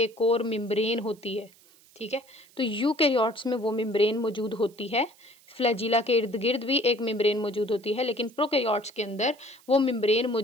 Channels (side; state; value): right; noise; hiss, 28 dB below the sound